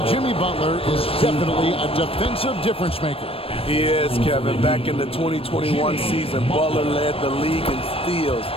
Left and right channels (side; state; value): right; late; 0.28 ms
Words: Jimmy Butler is definitely a defensive difference maker. He is, Kevin. Back in the 2021 season, Butler led the league in steals.